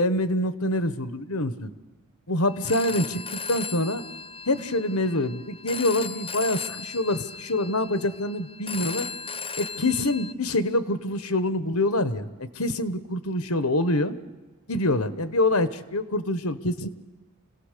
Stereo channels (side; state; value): both; normal; correlation -0.01